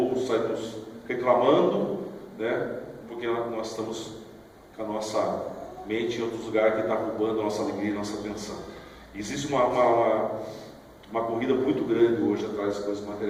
saímos reclamando, né? Porque nós estamos com a nossa mente em outros lugares que está roubando a nossa alegria e a nossa atenção. Existe uma corrida muito grande hoje atrás das coisas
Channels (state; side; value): identical; both; correlation 1.00